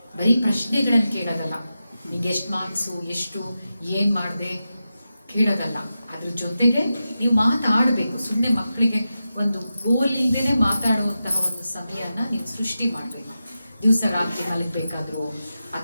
ಬರೀ ಪ್ರಶ್ನೆಗಳನ್ನು ಕೇಳೋದಲ್ಲ, ನಿಂಗೆ ಎಷ್ಟು ಮಾರ್ಕ್ಸು, ಎಷ್ಟು ಏನು ಮಾಡಿದೆ ಕೇಳೋದಲ್ಲ, ಅದ್ರ ಜೊತೆಗೆ ನೀವು ಮಾತಾಡಬೇಕು. ಸುಮ್ಮನೆ ಮಕ್ಕಳಿಗೆ ಒಂದು ಗೋಲ್ ಇಲ್ಲದೇ ಮಾತಾಡುವಂತಹ ಒಂದು ಸಮಯನ ನೀವು ಸೃಷ್ಟಿ ಮಾಡಬೇಕು. ದಿವಸ ರಾತ್ರಿ ಮಲಗಬೇಕಾದ್ರೂ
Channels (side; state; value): both; inverted; correlation -0.91